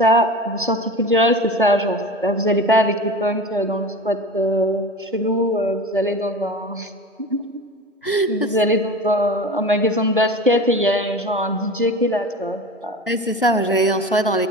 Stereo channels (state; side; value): normal; both; correlation 0.33